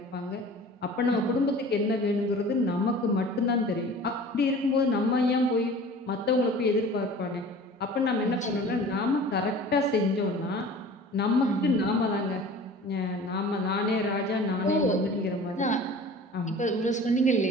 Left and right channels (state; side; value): normal; both; correlation 0.42